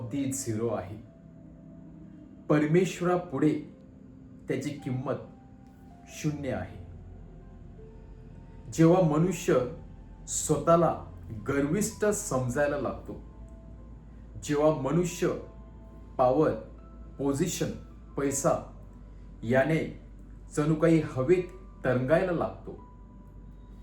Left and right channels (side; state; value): both; identical; correlation 1.00